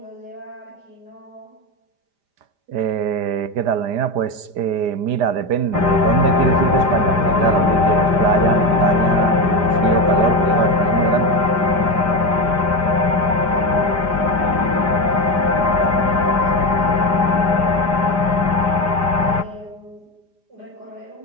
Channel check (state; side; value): late; left; 5.0 ms